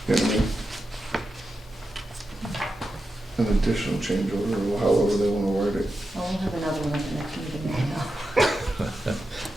what I mean? An additional change order, or however they wanna word it. well, we'll have another one at the next meeting anyhow.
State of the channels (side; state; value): both; normal; correlation 0.90